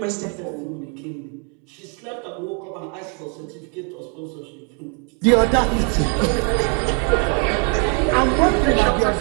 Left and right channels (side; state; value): left; quieter; 38.1 dB